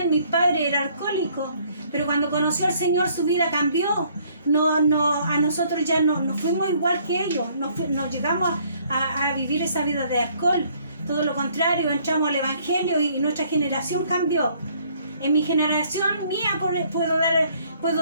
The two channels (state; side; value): inverted; both; correlation -0.63